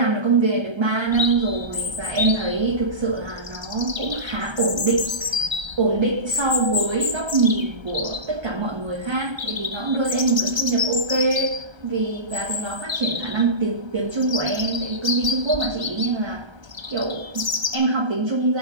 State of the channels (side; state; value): left; late; 1.3 ms